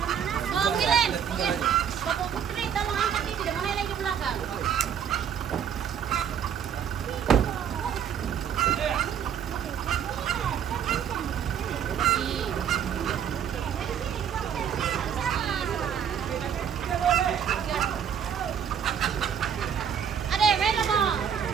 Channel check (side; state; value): left; quieter; 8.3 dB